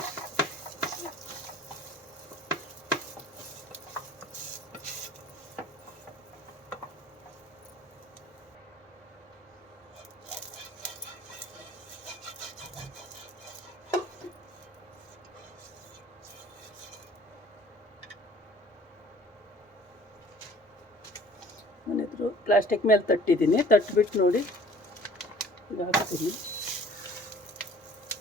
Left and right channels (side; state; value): both; normal; correlation 0.52